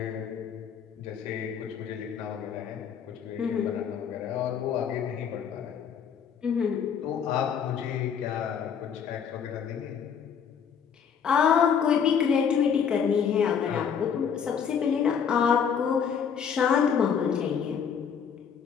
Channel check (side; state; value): right; quieter; 7.3 dB